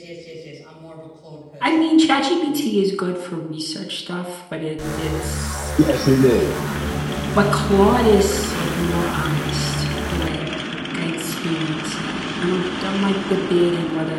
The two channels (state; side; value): identical; both; correlation 1.00